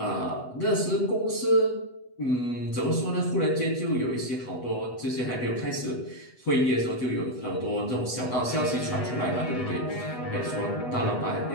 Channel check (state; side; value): late; right; 8.1 ms